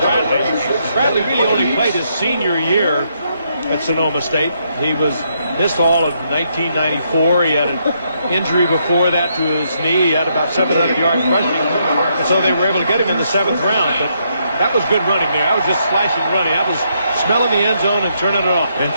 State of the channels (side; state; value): both; inverted; correlation -0.75